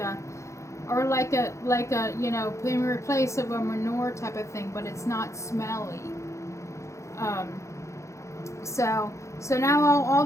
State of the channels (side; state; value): right; late; 0.14 ms